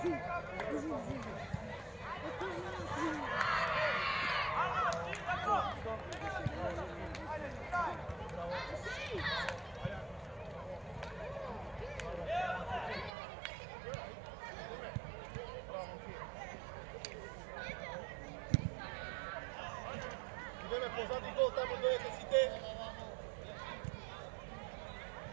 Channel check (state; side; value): drops out; left; at 13.1 s